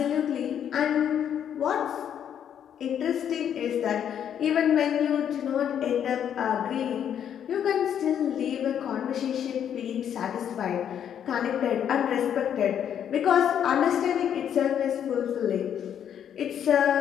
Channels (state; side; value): quieter; right; 9.2 dB